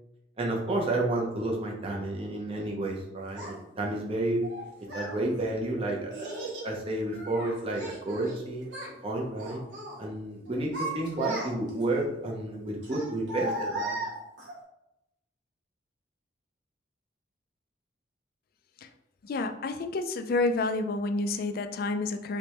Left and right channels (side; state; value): both; normal; correlation 0.45